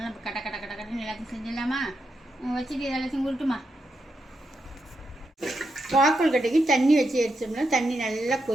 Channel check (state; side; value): normal; both; correlation 0.84